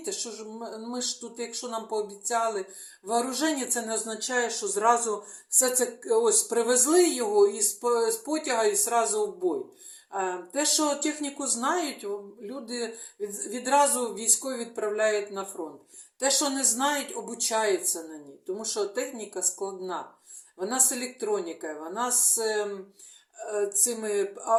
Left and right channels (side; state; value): both; identical; correlation 1.00